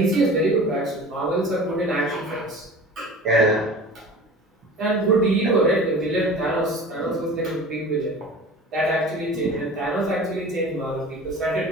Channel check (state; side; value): normal; both; correlation 0.39